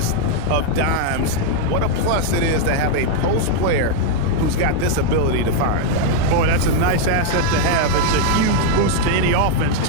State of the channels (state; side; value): different; both; correlation 0.00